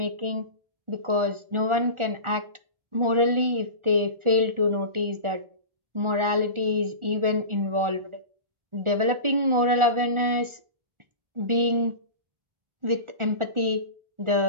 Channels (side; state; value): left; late; 1.4 ms